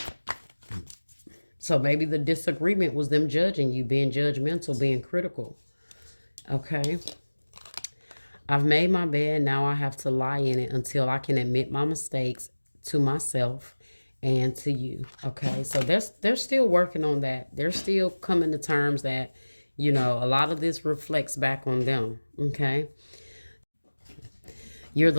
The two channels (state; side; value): inverted; both; correlation -1.00